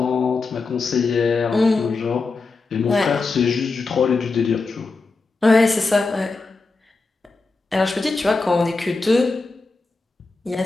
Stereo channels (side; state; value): right; quieter; 3.8 dB